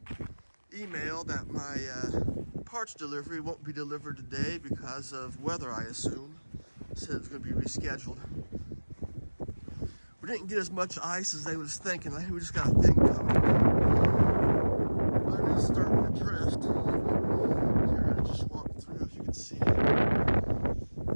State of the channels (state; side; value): inverted; both; correlation -1.00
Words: email that my parts delivery won't be delivered today because of weather, I assume. Said it's going to be rescheduled. We didn't get as much ice as they was thinking. I think we just got a thin coat. But it is starting to drift. Here, I just walked through, as you can see.